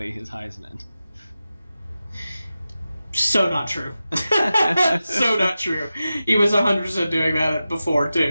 his Heisman. So not true. So not true. He was 100% doing that before,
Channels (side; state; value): both; inverted; correlation -0.93